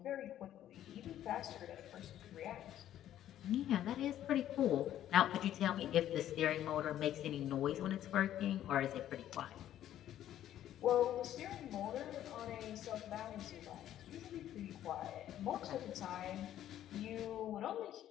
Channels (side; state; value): right; quieter; 11.8 dB